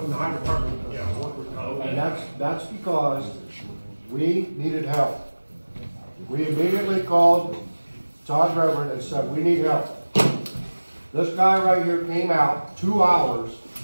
the higher department. Yeah, And that's because we needed help. We immediately called Todd Reverend and said, we need help. This guy right here came out 2 hours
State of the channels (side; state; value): both; inverted; correlation -1.00